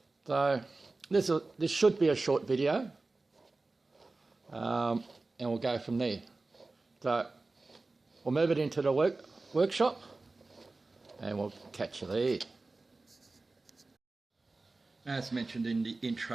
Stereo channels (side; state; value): left; quieter; 3.4 dB